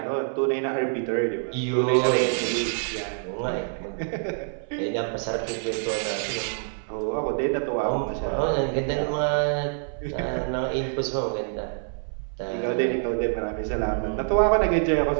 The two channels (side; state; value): left; silent; 59 dB below the other